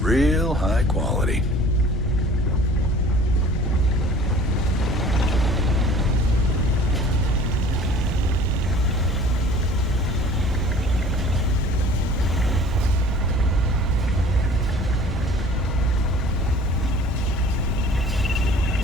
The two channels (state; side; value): normal; both; correlation 0.48